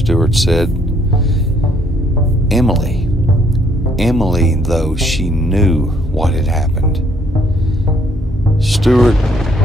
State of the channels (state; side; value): normal; both; correlation 0.67